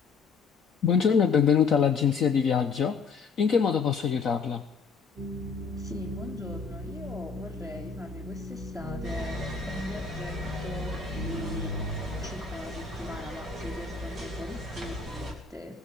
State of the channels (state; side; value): quieter; right; 5.3 dB